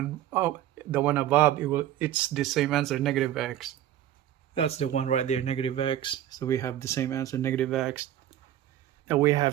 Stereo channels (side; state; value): left; quieter; 12.1 dB